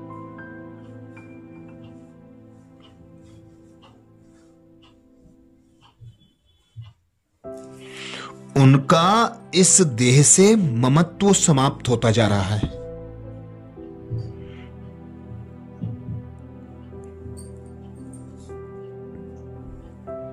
उनका इस देह से ममत्व समाप्त होता जा रहा है।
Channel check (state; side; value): identical; both; correlation 1.00